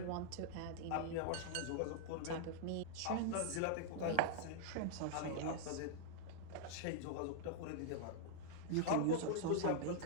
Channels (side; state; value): both; different; correlation -0.01